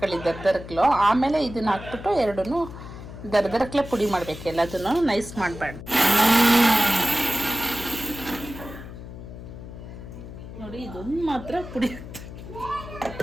ದರ್ದರ್ಕ್ಲು. ಆಮೇಲೆ ಇದನ್ನ ಹಾಕ್ಬಿಟ್ಟು ಎರಡನ್ನೂ ದರ್ದರ್ಕ್ಲೆ ಪುಡಿ ಮಾಡ್ಬೇಕು. ಎಲ್ಲದನ್ನು ನೈಸ್ ಮಾಡಬಾರ್ದು. ನೋಡಿ, ಇದೊಂದು ಮಾತ್ರ ಪುಡಿ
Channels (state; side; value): noise; left; hum, 12 dB below the sound